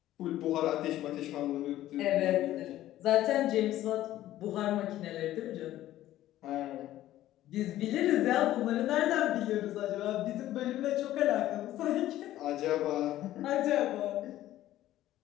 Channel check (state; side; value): quieter; right; 14.0 dB